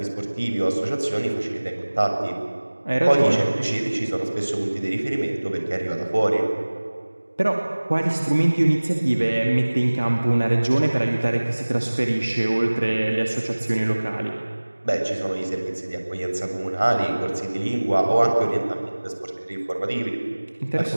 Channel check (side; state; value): both; inverted; correlation -1.00